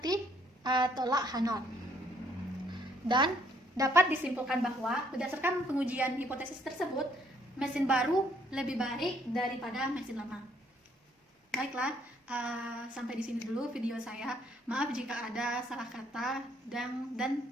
tolak H0. Dan dapat disimpulkan bahwa berdasarkan pengujian hipotesis tersebut, mesin baru lebih baik daripada mesin lama. Baiklah, sampai di sini dulu video saya. Maaf jika ada salah kata dan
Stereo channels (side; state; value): both; normal; correlation 0.66